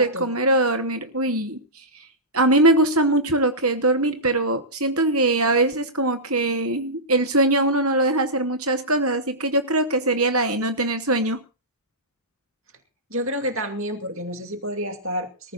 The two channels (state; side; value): normal; both; correlation -0.15